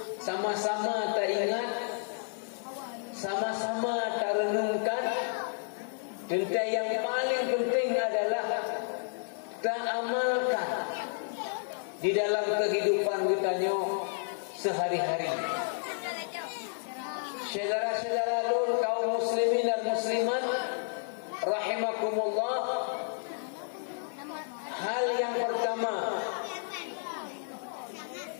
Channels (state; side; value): silent; right; 57 dB below the other